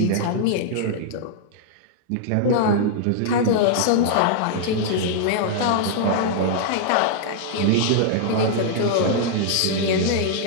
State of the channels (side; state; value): both; different; correlation -0.01